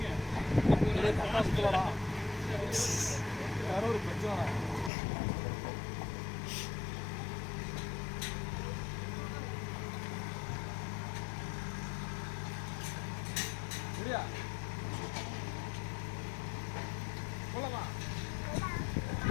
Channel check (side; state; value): right; drops out; at 4.9 s